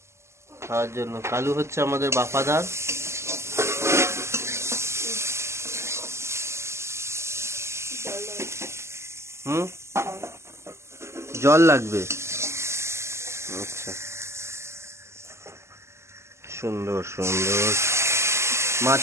খাওয়ার জন্য। কালু হচ্ছে আমাদের বাফাদার। হুম, জল লাগবে। আচ্ছা, সুন্দর সুন্দর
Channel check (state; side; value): late; left; 0.13 ms